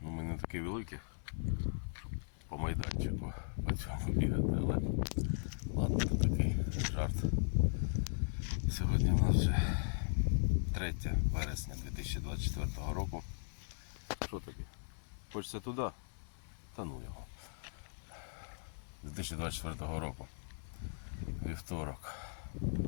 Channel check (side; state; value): right; silent; digital silence